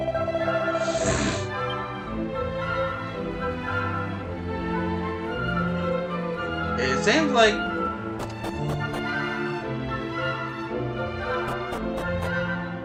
It seems like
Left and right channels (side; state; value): both; identical; correlation 1.00